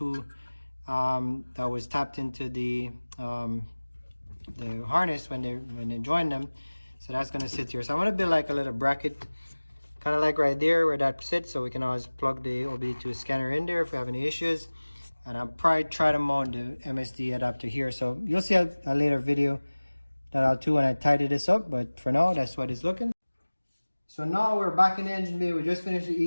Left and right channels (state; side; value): inverted; both; correlation -1.00